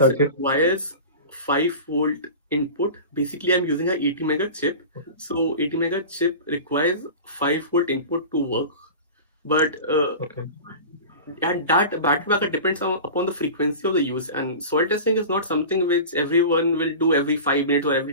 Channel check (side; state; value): both; inverted; correlation -0.33